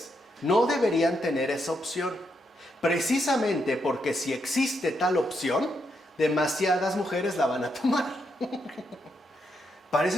no deberían tener esa opción. Precisamente porque si existe tal opción, demasiadas mujeres la van a tomar.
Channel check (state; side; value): normal; both; correlation 0.80